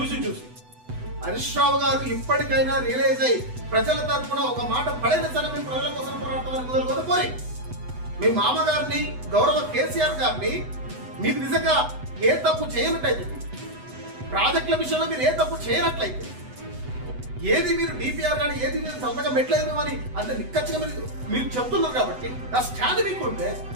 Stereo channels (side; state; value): left; late; 8.0 ms